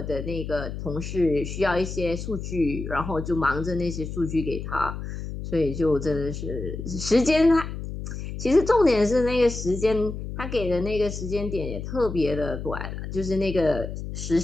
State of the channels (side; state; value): left; noise; hum, 7 dB below the sound